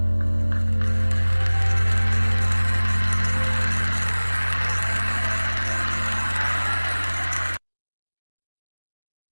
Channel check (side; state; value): both; inverted; correlation -1.00